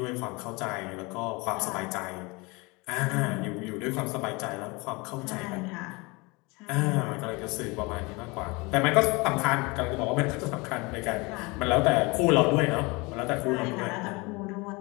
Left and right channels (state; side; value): quieter; right; 26.2 dB